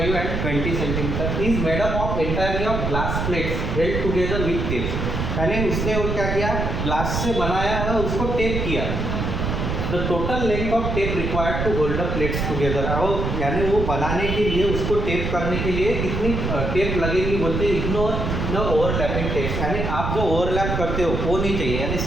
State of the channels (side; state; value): right; noise; rumble, 2 dB below the sound